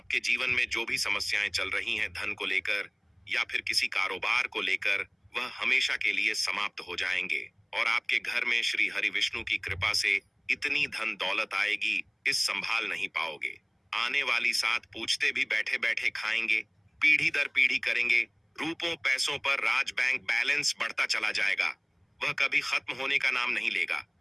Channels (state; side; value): identical; both; correlation 1.00